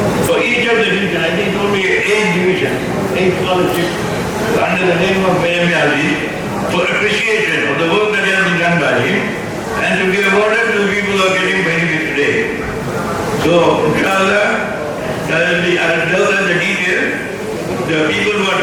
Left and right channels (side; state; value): both; identical; correlation 1.00